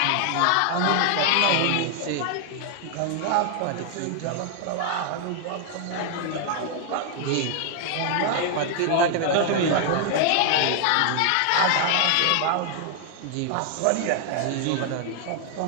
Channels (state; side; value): different; both; correlation 0.00